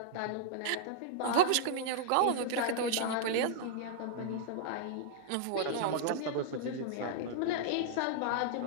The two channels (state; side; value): different; both; correlation -0.01